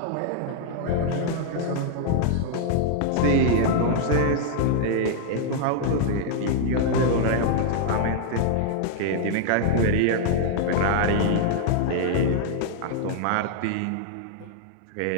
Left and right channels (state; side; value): different; both; correlation -0.01